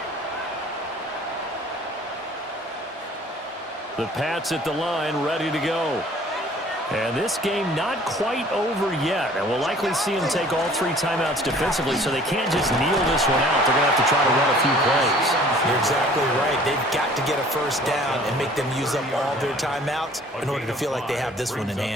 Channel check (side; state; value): both; normal; correlation 0.52